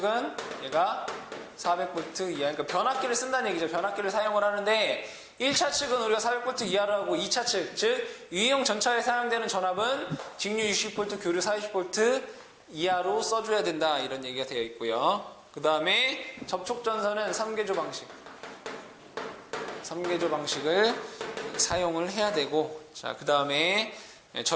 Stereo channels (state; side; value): identical; both; correlation 1.00